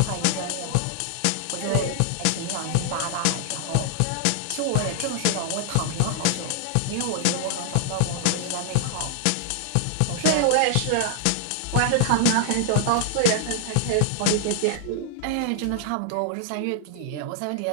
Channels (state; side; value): different; both; correlation -0.01